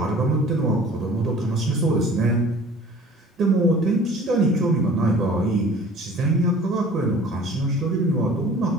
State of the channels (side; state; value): both; normal; correlation 0.47